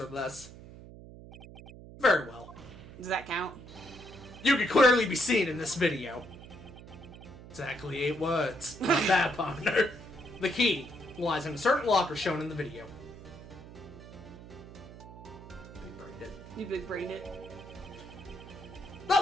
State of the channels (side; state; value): right; noise; hum, 16 dB below the sound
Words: or less? Very well. Does that count? You can clearly be seen in this video. Exactly 8 words. Not bad, partner. The key lies in a certain locker shown in the video. Big-brained it. You big-brained it.